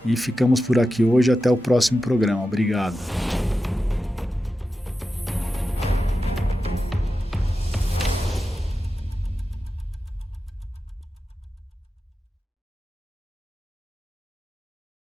E ficamos por aqui hoje, até o próximo programa. Obrigado.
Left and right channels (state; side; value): normal; both; correlation 0.91